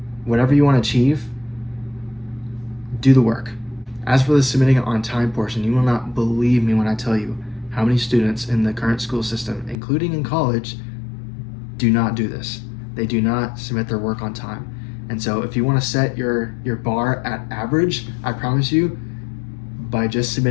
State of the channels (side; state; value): right; drops out; at 9.8 s